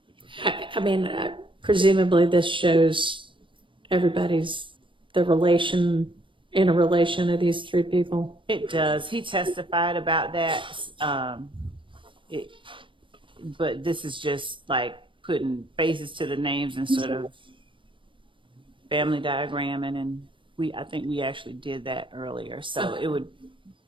I mean, presumably this shows everybody's in a relation of these three people. It does. He testified about that. But this is just like putting faces to the names and sort of family diagramming, and I think we actually did that earlier. So it would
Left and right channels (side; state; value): left; late; 0.25 ms